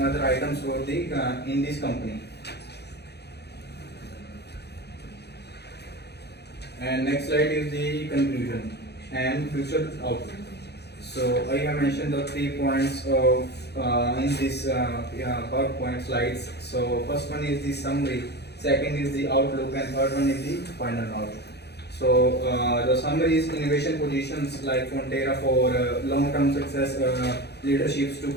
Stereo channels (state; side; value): late; right; 0.48 ms